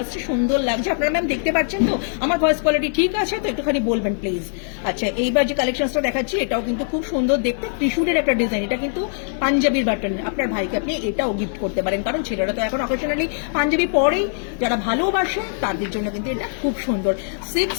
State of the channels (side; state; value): right; silent; digital silence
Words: আসছে, সুন্দর লাগছে। আপনারা ম্যাম দেখতে পাচ্ছেন তো? আমার ভয়েস কোয়ালিটি ঠিক আছে তো? একটুখানি বলবেন প্লিজ। আচ্ছা, এইবার যে কালেকশনটা দেখাচ্ছি, এটাও কিন্তু খুব সুন্দর দেখতে, ত্রিশূলের একটা ডিজাইন। এটা কিন্তু পাঞ্জাবির বাটন, আপনার ভাইকে আপনি এটাও গিফট করতে পারেন, কারণ ছেলেরা তো এখন অকেশনালি পাঞ্জাবি পরেই। যারা ভালোবাসে তাদের জন্য কিন্তু এটা খুব সুন্দর।